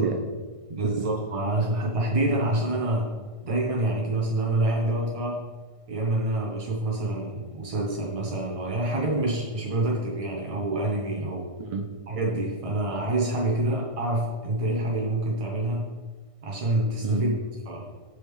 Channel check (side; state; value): left; late; 1.6 ms